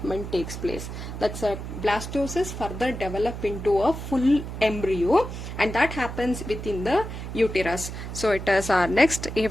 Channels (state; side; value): noise; right; hum, 8 dB below the sound